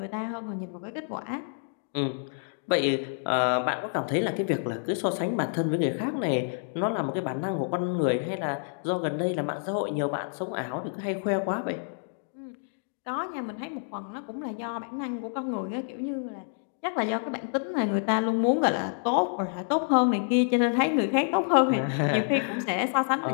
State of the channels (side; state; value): right; silent; digital silence